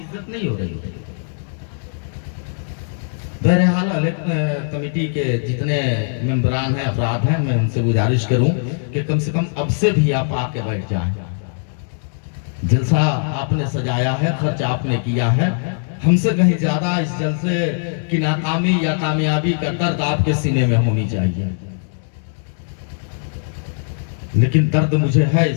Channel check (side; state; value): right; silent; digital silence